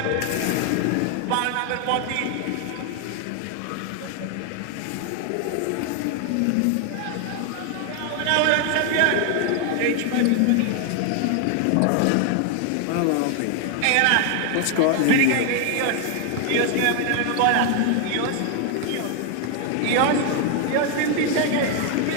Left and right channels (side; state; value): both; different; correlation 0.00